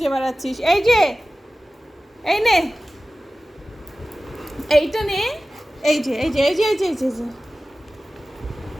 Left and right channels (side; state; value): both; normal; correlation 0.96